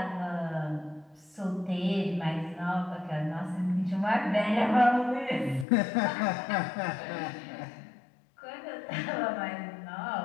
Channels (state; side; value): drops out; right; at 5.7 s